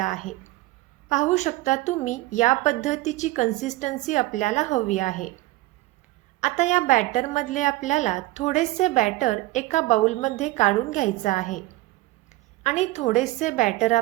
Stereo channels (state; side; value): quieter; left; 18.6 dB